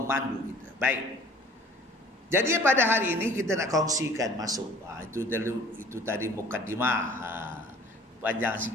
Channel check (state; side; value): normal; both; correlation 0.50